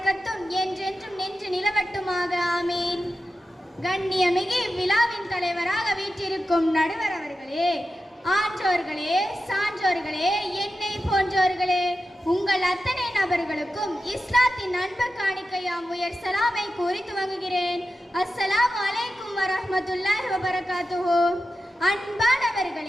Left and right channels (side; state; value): both; normal; correlation 0.91